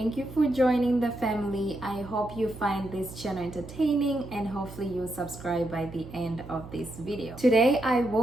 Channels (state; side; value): noise; right; hum, 16 dB below the sound